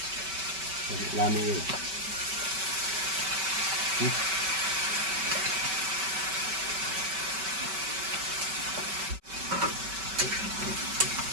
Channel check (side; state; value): left; late; 5.2 ms